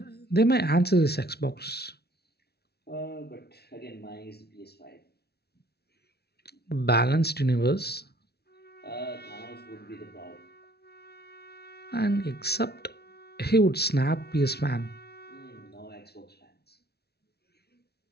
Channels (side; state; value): right; late; 0.47 ms